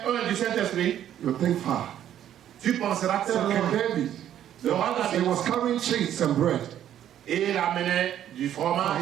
un du Saint-Esprit, you think far. tu penseras So tellement. King David, Le roi he David, was carrying cheese and bread. et il amenait du fromage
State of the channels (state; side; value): quieter; left; 10.9 dB